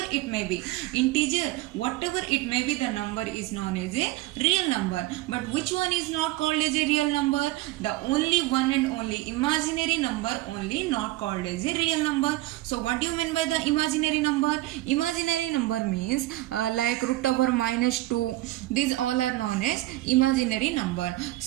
it may be, integer, whatever it may be, the number is known as a real number. But which one is not called as a real number? The only one and only imaginary number only not called as a real number. So what do you mean by the imaginary number? Imaginary number means like root over -2. These all are known as imaginary number.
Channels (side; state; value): left; quieter; 18.0 dB